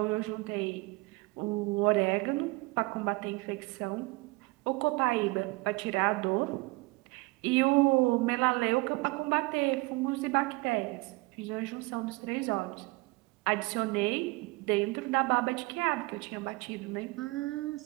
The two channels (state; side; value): quieter; left; 24.1 dB